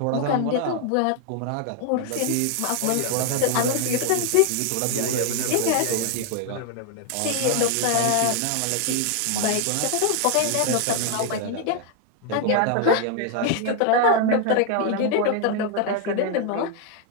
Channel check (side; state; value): both; different; correlation 0.00